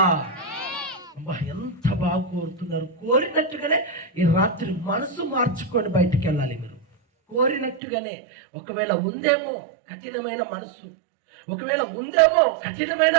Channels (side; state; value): left; drops out; at 7.8 s